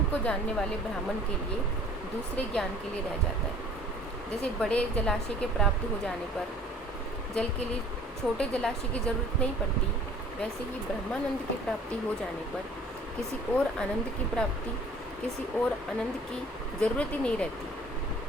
को जानने वाले ब्राह्मण के लिए दूसरे ज्ञान के लिए रह जाता है। जैसे बड़े जलाशय के प्राप्त हो जाने पर जल के लिए छोटे जलाशय की जरूरत नहीं पड़ती, वैसे ही ब्रह्मानंद की प्राप्ति हो जाने पर किसी और आनंद की प्राप्ति, किसी और आनंद की जरूरत ही नहीं रहती।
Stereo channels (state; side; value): normal; both; correlation 0.51